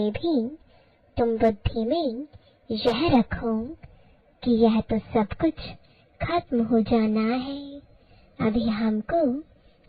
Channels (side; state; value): both; identical; correlation 1.00